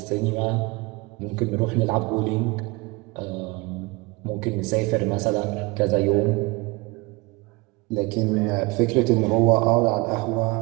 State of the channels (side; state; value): left; quieter; 25.1 dB